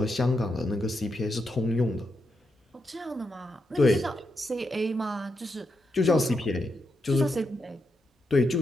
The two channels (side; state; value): both; normal; correlation 0.83